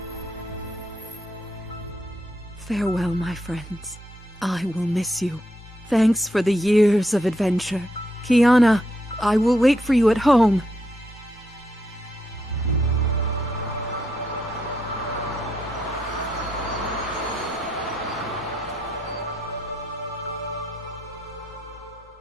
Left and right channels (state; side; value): normal; both; correlation 0.79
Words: Farewell, my friends. I will miss you. Thanks for the years of adventure. Kiana, I will wait for you at home.